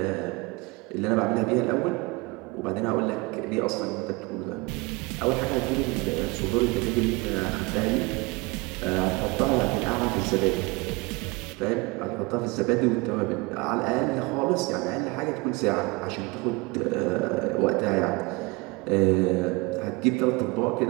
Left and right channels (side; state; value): left; quieter; 25.3 dB